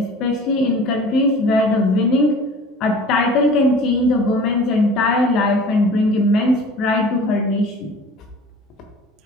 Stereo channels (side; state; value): both; normal; correlation 0.44